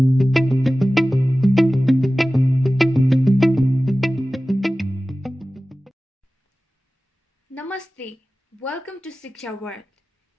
Welcome to Siksha World.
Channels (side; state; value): both; normal; correlation 0.96